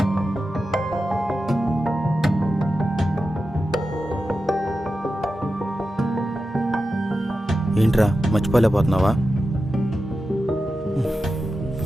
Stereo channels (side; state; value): both; normal; correlation 0.91